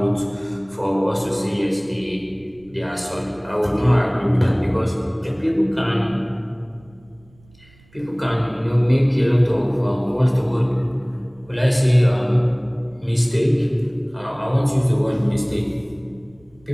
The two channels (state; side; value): noise; right; rumble, 29 dB below the sound